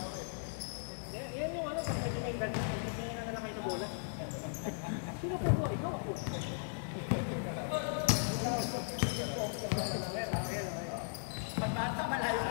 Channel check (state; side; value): silent; right; digital silence